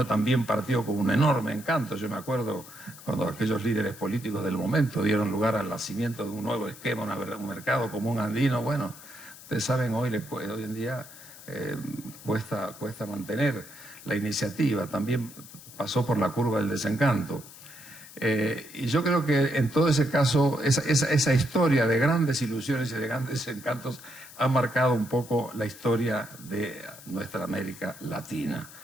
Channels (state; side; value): noise; left; hiss, 18 dB below the sound